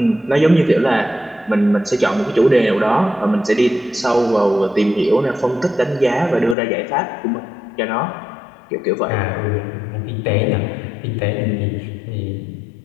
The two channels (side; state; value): right; drops out; at 6.6 s